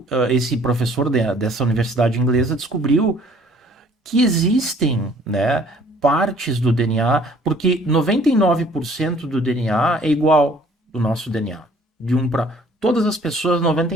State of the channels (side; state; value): both; normal; correlation 0.57